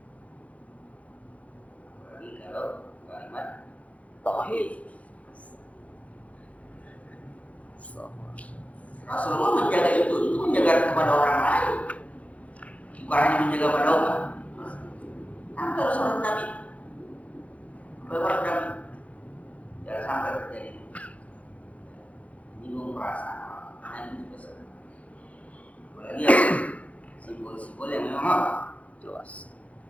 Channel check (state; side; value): late; right; 0.066 ms